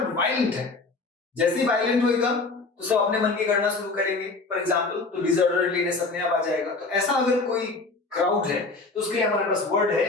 वायलेंट है। जैसे ही वायलेंट होएगा तो सब अपने मन की करना शुरू करेंगे, फॉर एग्जाम्पल, तो डिसऑर्डरलीनेस अपने आप आ जाएगा। तो ऐसा अगर कोई क्राउड है तो उसके लिए हमारे पास वर्ड है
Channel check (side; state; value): right; quieter; 3.7 dB